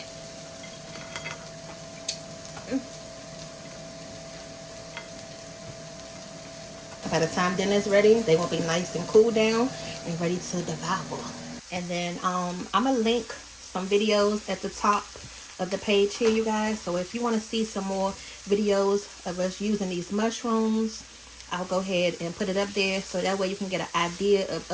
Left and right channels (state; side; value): identical; both; correlation 1.00